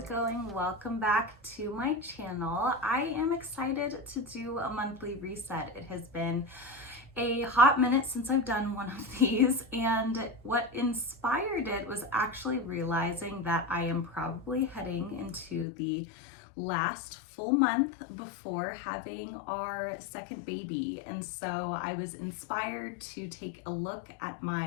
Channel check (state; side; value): drops out; right; at 15.7 s